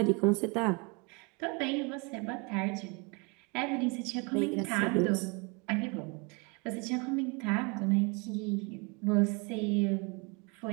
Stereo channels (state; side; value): quieter; left; 30.3 dB